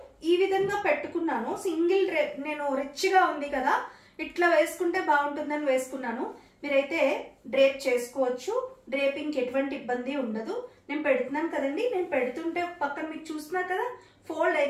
ఈ విధంగా పెట్టుకున్నాను. సింగిల్ డ్రేప్, నేను రిచ్గా ఉంది కదా ఇట్లా వేసుకుంటే బాగుంటుందని వేసుకున్నాను. మీరైతే డ్రేప్ చేసుకోవచ్చు. డ్రేపింగ్కి ఎటువంటి ఇబ్బంది ఉండదు. నేను పెడుతున్నాను కదండి, నేను పెడుతుంటే పక్కన మీకు చూస్తున్నారు కదా ఫోల్డ్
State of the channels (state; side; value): identical; both; correlation 1.00